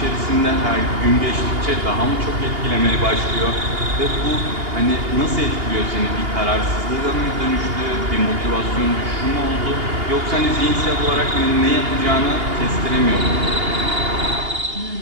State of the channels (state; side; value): late; left; 2.8 ms